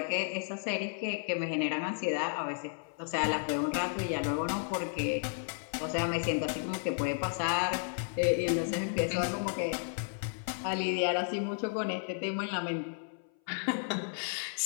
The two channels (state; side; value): silent; right; 56 dB below the other